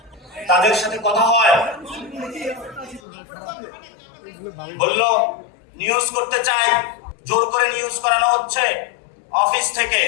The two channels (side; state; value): right; drops out; at 3.0 s